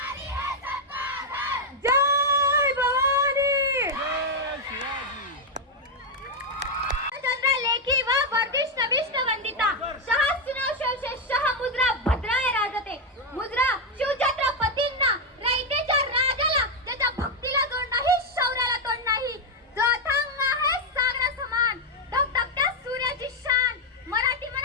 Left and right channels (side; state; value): both; normal; correlation 0.02